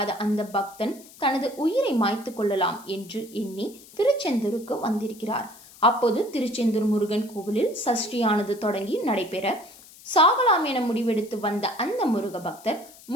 அந்த பக்தன் தனது உயிரை மாய்த்து கொள்ளலாம் என்று எண்ணி திருச்செந்தூருக்கு வந்திருக்கிறார். அப்போது திருச்செந்தூர் முருகன் கோவிலில் சஷ்டியானது தொடங்கி நடைபெற சாகலாம் என முடிவெடுத்து வந்த அந்த முருக பக்தர்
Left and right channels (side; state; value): left; noise; hiss, 21 dB below the sound